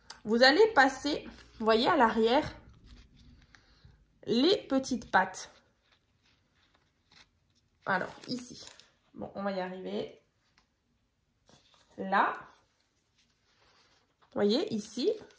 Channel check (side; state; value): both; identical; correlation 1.00